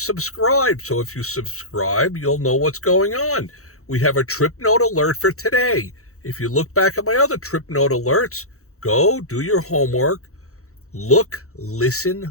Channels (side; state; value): right; late; 0.64 ms